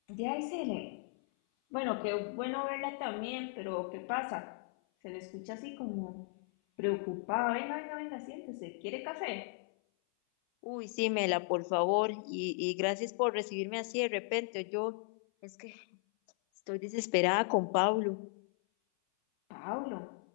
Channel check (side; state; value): right; silent; 53 dB below the other